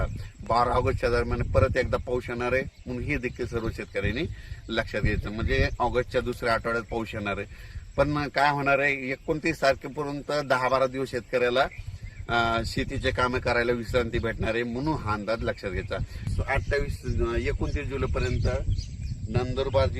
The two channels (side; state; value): both; identical; correlation 1.00